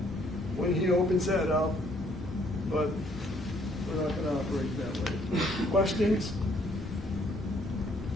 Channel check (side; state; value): both; normal; correlation 0.65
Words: when he opens that up, but we're not going to operate that way. Questions?